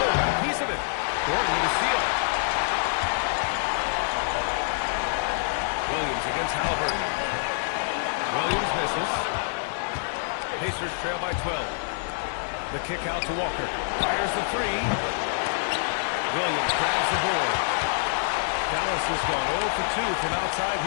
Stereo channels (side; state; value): right; silent; digital silence